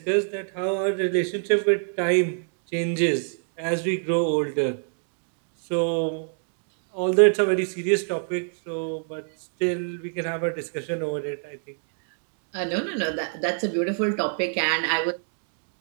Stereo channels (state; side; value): silent; left; 61 dB below the other